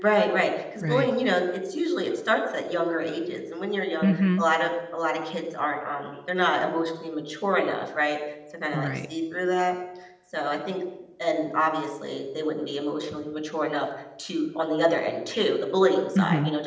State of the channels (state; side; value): identical; both; correlation 1.00